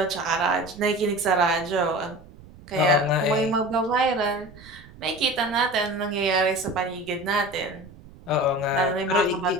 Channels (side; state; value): right; noise; rumble, 20 dB below the sound